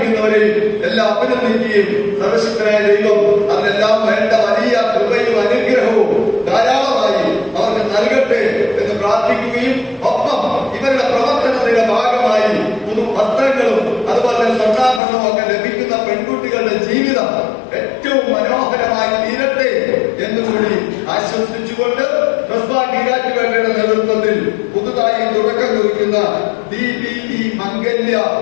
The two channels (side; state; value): right; drops out; at 15.0 s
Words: എല്ലാം അഭിനന്ദിക്കുകയും സർവശക്തനായ ദൈവം അതിനെല്ലാം വേണ്ട വലിയ കൃപയും അനുഗ്രഹവും ധാരാളമായി അവർക്ക് നൽകട്ടെ എന്ന് പ്രാർത്ഥിക്കുകയും ഒപ്പം ഇവരുടെ പ്രവർത്തനത്തിന്റെ ഭാഗമായി പുതു വസ്ത്രങ്ങളും അതുപോലെ സ്വർണ്ണാഭരണവും ഒക്കെ ലഭിക്കുന്ന പെൺകുട്ടികളുടെ ജീവിതം ഏറ്റവും മനോഹരമായി തീരട്ടെ എന്നുകൂടി ആശംസിച്ചുകൊണ്ട് ട്രസ്റ്റ് ബാങ്ക് ഈരാറ്റുപേട്ടയുടെ നേതൃത്വത്തിൽ പുതുതായി തുടക്കം കുറിക്കും നടത്തിക്കൊണ്ടിരിക്കുന്ന DBE മംഗല്യ